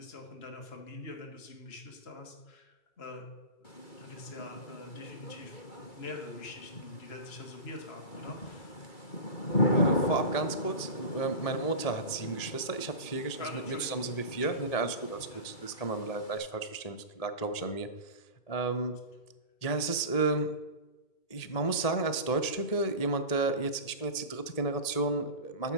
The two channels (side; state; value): right; late; 1.8 ms